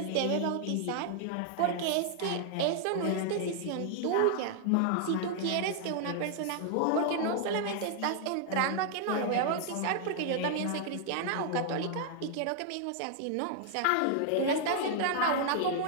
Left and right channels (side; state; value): both; different; correlation 0.00